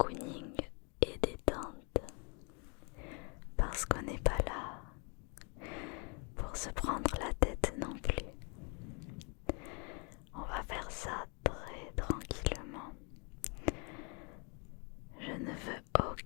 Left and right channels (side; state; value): right; quieter; 34.7 dB